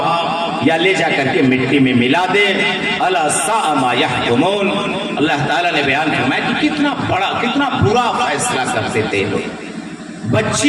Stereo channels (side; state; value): both; identical; correlation 1.00